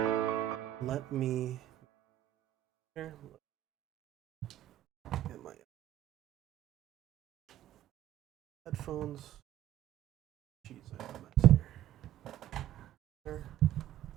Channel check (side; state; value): left; quieter; 12.5 dB